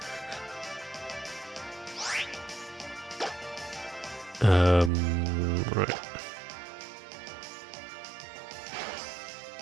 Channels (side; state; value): left; drops out; at 4.9 s